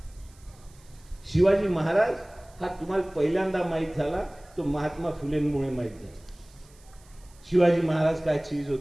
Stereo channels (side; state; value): right; noise; hiss, 28 dB below the sound